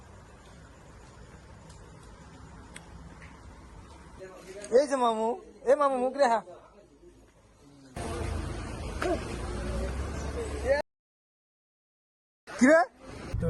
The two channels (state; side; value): identical; both; correlation 1.00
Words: এই যে মামু মুখ রেহা কি রে তো